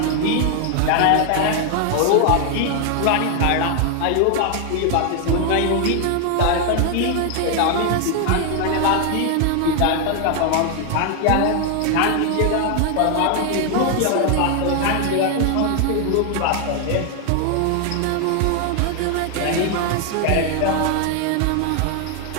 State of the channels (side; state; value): both; different; correlation 0.00